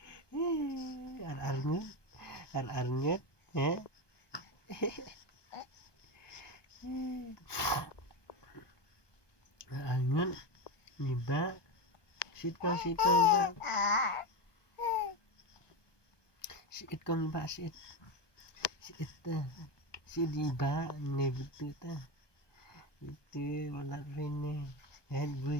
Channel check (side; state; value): right; late; 1.2 ms